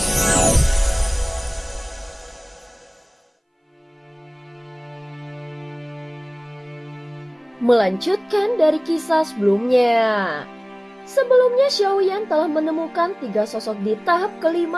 Melanjutkan dari kisah sebelumnya. Sebelumnya Xiaoyan telah menemukan 3 sosok di tahap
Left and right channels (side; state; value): both; identical; correlation 1.00